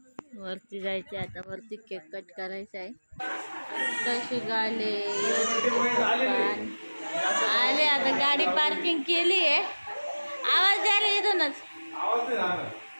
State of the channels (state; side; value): inverted; both; correlation -1.00